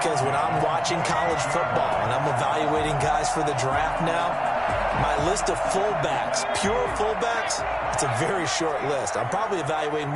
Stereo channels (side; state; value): both; identical; correlation 1.00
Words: when I'm watching college football and I'm evaluating guys for the draft now, my list of fullbacks, pure fullbacks, it's a very short list. I'm probably evaluating